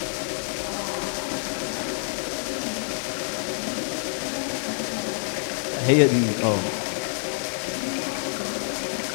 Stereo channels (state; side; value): silent; right; digital silence